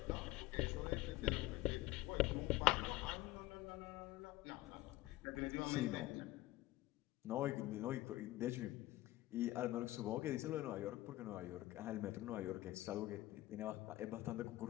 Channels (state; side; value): quieter; right; 17.3 dB